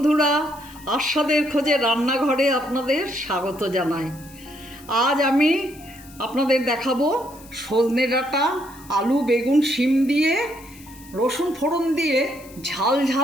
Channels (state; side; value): noise; left; hiss, 22 dB below the sound